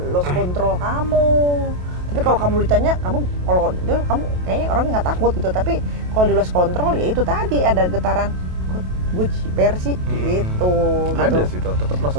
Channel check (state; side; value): late; left; 28 ms